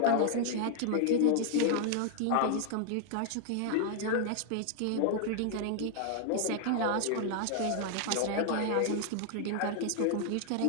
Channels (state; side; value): different; both; correlation 0.00